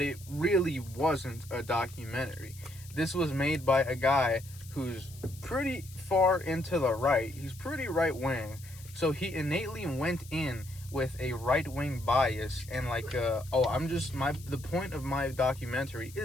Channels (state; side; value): noise; left; hiss, 20 dB below the sound